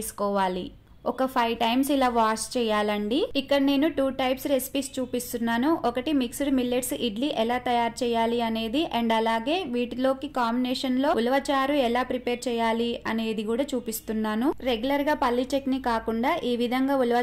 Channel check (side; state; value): both; identical; correlation 1.00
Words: ఒక 5 టైమ్స్ ఇలా వాష్ చేయాలండి. ఇక్కడ నేను 2 టైప్స్ రెసిపీస్ చూపిస్తున్నాను. ఒకటి మిక్స్డ్ మిల్లెట్స్ ఇడ్లీ ఎలా తయారు చేయాలి అనేది అండ్ అలాగే వీటిలోకి కాంబినేషన్ లో ఉలవచారు ఎలా ప్రిపేర్ చేయాలి అనేది కూడా చూపిస్తున్నాను. రెగ్యులర్ గా పల్లి చట్నీ కాకుండా ఈ విధంగా